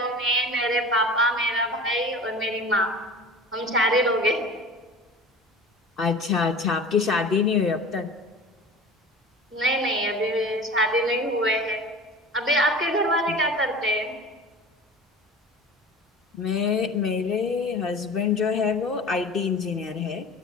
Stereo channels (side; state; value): both; normal; correlation 0.38